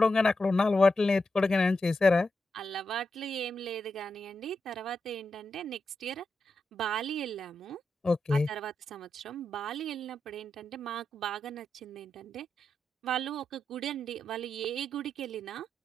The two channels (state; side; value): normal; both; correlation 0.86